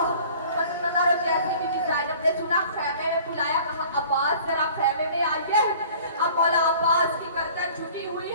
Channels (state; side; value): inverted; both; correlation -0.48